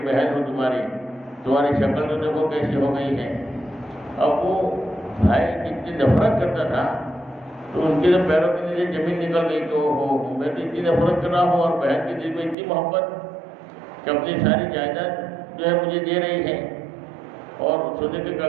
بہن ہوں تمہاری شکل تو دیکھو کیسی ہو گئی ہے۔ اب وہ بھائی جتنی نفرت کرتا تھا تو ان کے جو پیروں کے نیچے زمین نکل گئی کہ میں تو اتنی نفرت کر رہا ہوں اور بہن کے دل میں اتنی محبت کہ اپنی ساری جائیداد جو ہے مجھے دے رہی ہے اور سونے کے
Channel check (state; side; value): drops out; left; at 12.6 s